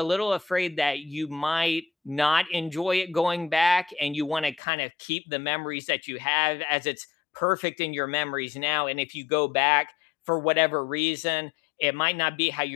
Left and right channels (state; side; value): drops out; right; at 4.6 s